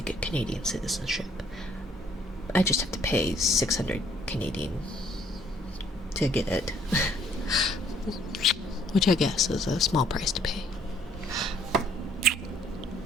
get Canadian citizenship. I just have to pay 600 Canadian to get it. Which I guess is a small price to pay.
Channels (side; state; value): both; normal; correlation 0.63